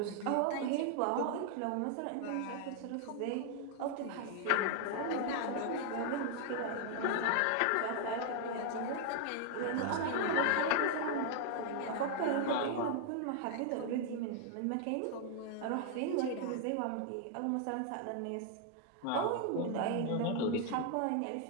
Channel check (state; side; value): different; both; correlation 0.00